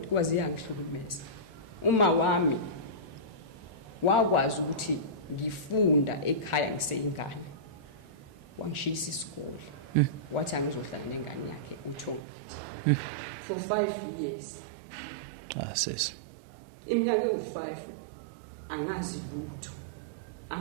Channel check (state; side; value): drops out; left; at 12.2 s